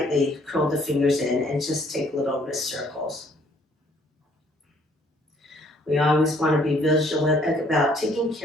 curl the fingers in and just take little wrist circles. We always want to be vigilant about taking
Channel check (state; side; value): normal; both; correlation 0.62